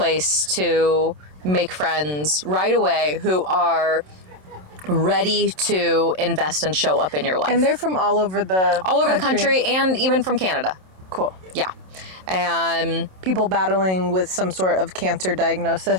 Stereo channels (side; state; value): left; late; 27 ms